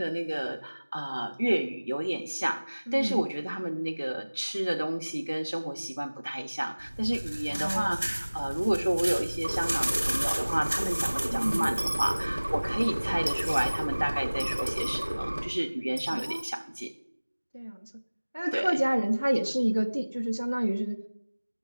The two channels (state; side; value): inverted; both; correlation -1.00